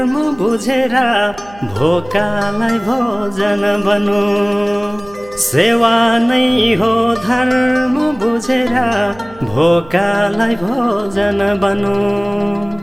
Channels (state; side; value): noise; right; hum, 22 dB below the sound